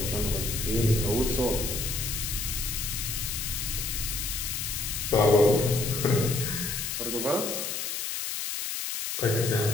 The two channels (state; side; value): noise; left; hiss, 3 dB below the sound